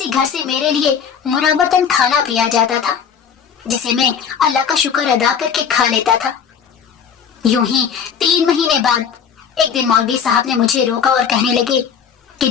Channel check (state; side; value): quieter; right; 7.3 dB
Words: घर से मेरे लिए मुराबतन खाना भी आ जाता था, जिसे मैं अल्लाह का शुक्र अदा करके खा लेता था। यूं ही 3 महीने बाद एक दिन मौलवी साहब ने मुझे रोका और कहने लगे कि